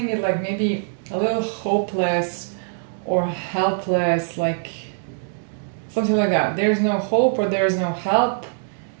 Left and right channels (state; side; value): silent; left; 64 dB below the other